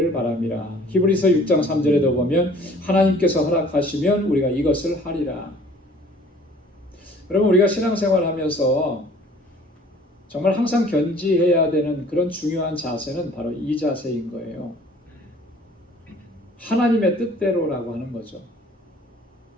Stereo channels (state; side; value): normal; both; correlation 0.52